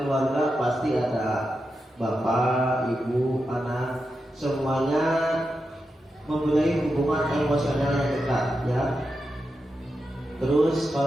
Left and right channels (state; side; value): normal; both; correlation 0.88